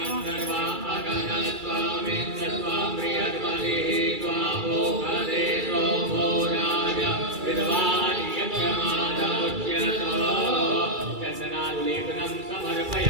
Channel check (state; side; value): late; left; 2.3 ms